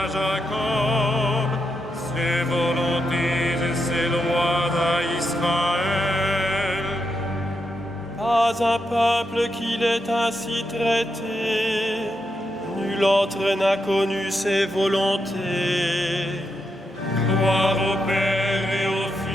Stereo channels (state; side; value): normal; both; correlation 0.84